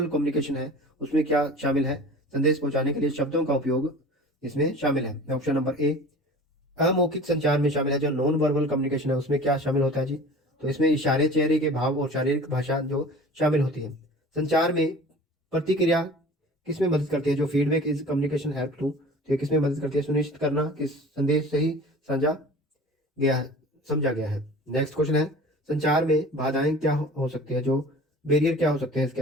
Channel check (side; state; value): both; normal; correlation 0.41